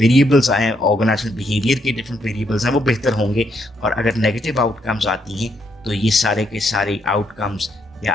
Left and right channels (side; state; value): both; normal; correlation 0.75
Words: आए हैं, ऑर्गेनाइजेशनल बिहेवियर के डिफरेंट वेरिएबल्स हैं, वो बेहतर होंगे। और अगर नेगेटिव आउटकम्स आती हैं तो ये सारे के सारे आउटकम्स